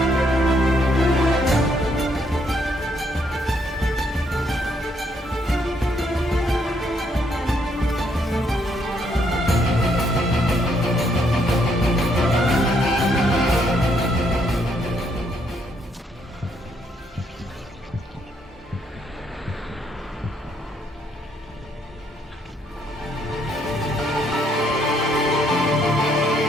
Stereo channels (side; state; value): both; normal; correlation 0.72